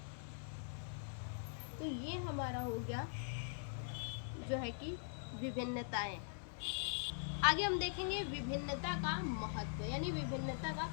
तो ये हमारा हो गया जो है कि विभिन्नताएं। आगे हम देखेंगे विभिन्नता का महत्व, यानी विभिन्नता का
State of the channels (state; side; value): silent; right; digital silence